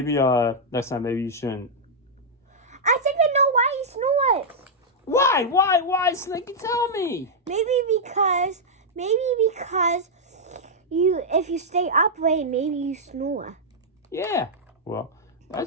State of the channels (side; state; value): both; normal; correlation -0.06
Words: next time maybe you shouldn't. I think I know why he snores. Why, Slinky? Tell me. Maybe because if you stay upright, maybe you snore. Yeah. Well,